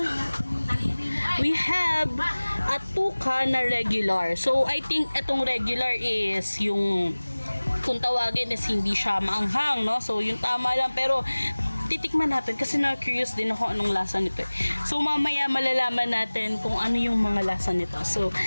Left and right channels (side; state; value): both; inverted; correlation -1.00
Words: we have a tuka na regular. So, I think itong regular is yung kung tawagin is hindi siya maanghang, no? So, yung tama lang. Pero, titikman natin kasi na-curious din ako anong lasa nito. So, mamaya malalaman natin kung ano yung mga lasa nito. So,